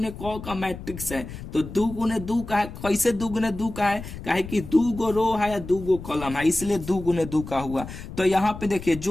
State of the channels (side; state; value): left; noise; rumble, 11 dB below the sound